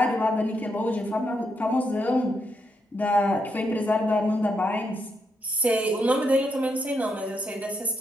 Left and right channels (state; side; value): normal; both; correlation 0.80